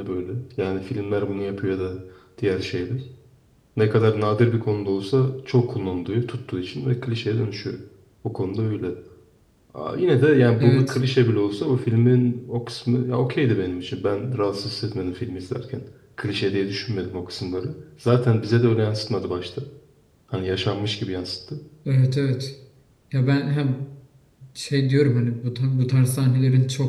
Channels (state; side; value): identical; both; correlation 1.00